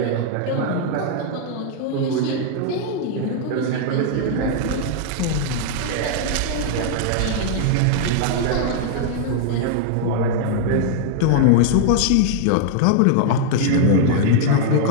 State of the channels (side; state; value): both; different; correlation 0.00